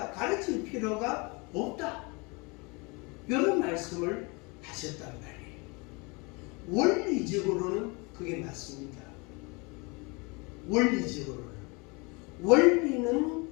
가르칠 필요가 없다. 이런 말씀을 하셨단 말이에요. 원리적으로는 그게 맞습니다. 원리적으로는. 원리는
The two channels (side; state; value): right; quieter; 28.8 dB